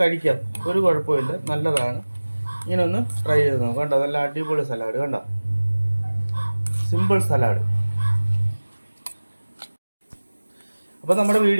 ഒരു കുഴപ്പമില്ല, നല്ലതാണ്. ഇങ്ങനെ ഒന്ന് ട്രൈ ചെയ്ത് നോക്കാം. കണ്ടോ നല്ല അടിപൊളി സലാഡ്. കണ്ടോ സിമ്പിൾ സലാഡ്. അപ്പോൾ നമ്മുടെ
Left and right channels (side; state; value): both; inverted; correlation -1.00